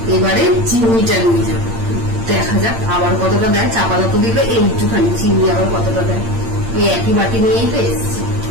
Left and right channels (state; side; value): late; left; 8.8 ms